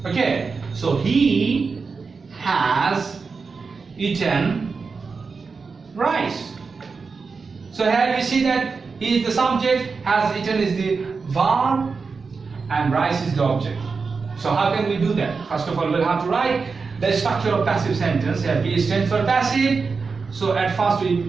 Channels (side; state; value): left; quieter; 4.8 dB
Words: Okay, so he has eaten rice. So here you see that he is the subject, has eaten is the verb, and rice is the object. So how can we do that? First of all, we'll have to write the structure of passive sentence. Here B stands for passive. So at first we